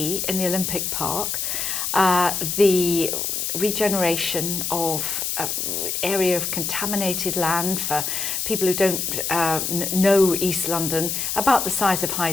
in the Olympic Park, the regeneration of area of contaminated land for people who don't know East London, about the size of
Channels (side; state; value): left; noise; hiss, 1 dB below the sound